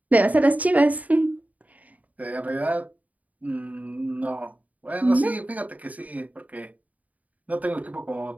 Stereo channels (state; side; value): late; left; 0.073 ms